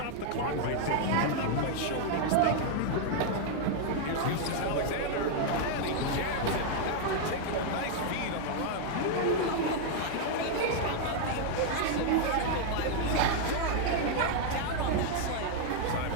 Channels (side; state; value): both; different; correlation 0.00